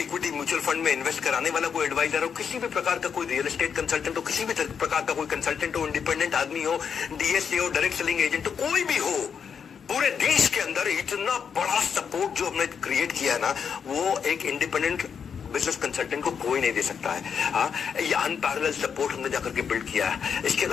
म्यूचुअल फंड में इन्वेस्ट कराने वाला कोई एडवाइजर हो, किसी भी प्रकार का कोई रियल एस्टेट कंसल्टेंट हो, किसी भी प्रकार का कोई कंसल्टेंट हो, इंडिपेंडेंट आदमी हो, DSA हो, डायरेक्ट सेलिंग एजेंट हो, कोई भी हो, पूरे देश के अंदर इतना बड़ा सपोर्ट जो हमने क्रिएट किया है ना, वो एक इंडिपेंडेंट बिजनेस कंसल्टेंट को कोई नहीं दे सकता है। हाँ, ये अनपैरेलल सपोर्ट हमने जाकर के बिल्ड किया है। इसके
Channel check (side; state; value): right; quieter; 6.9 dB